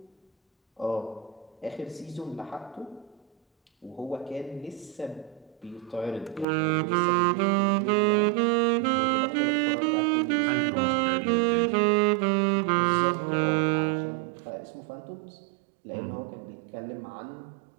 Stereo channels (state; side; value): drops out; left; at 6.5 s